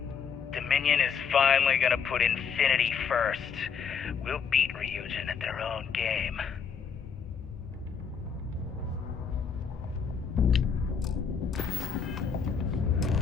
Dominion is finally gonna put Infinity first. We'll beat Ryujin at their own game.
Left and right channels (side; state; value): right; quieter; 6.5 dB